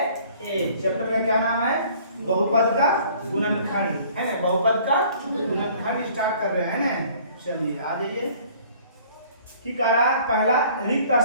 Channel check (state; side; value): inverted; both; correlation -0.54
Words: चैप्टर का क्या नाम है, बहुपद का गुणनखंड है ना। बहुपद का गुणनखंड स्टार्ट कर रहे हैं ना। चलिए आ जाइए। की कह रहा है, पहला रिक्त